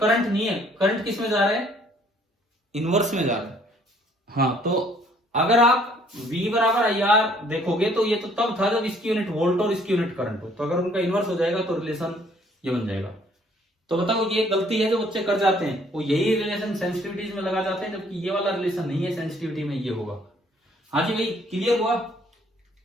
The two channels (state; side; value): normal; both; correlation 0.61